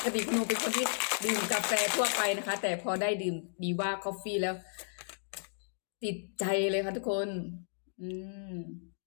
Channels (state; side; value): silent; right; digital silence